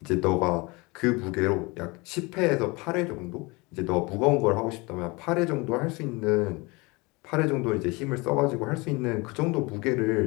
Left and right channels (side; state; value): right; quieter; 25.7 dB